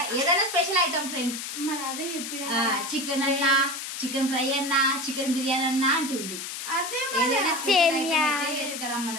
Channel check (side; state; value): left; noise; hiss, 7 dB below the sound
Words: ఏదైనా స్పెషల్ ఐటమ్ ఫ్రెండ్స్. మరి అదే చెప్పిన చికెన్ అన్నా, చికెన్ ఫ్రై అన్నా, చికెన్ బిర్యానీ అన్నా అంటుంది.